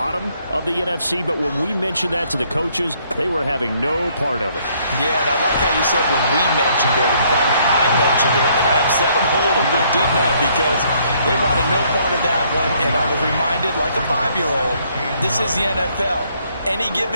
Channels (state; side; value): inverted; both; correlation -0.67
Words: of the NFC. But when we mentioned that to the coaches, they were having no part of it. Yeah, and I like how you said when we mentioned it. In fact, I mentioned it, and I upset them a little bit, didn't I? Because they wanted no part of that one. And I was reminded, like a 5-year-old, this is the NFL. Any